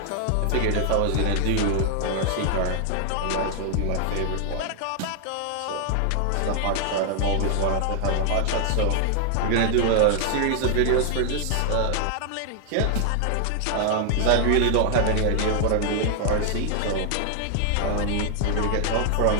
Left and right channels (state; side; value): different; both; correlation 0.00